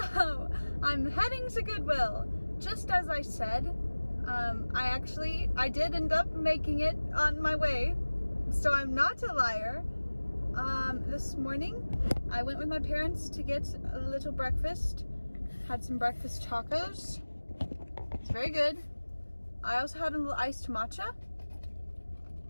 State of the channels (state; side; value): inverted; both; correlation -1.00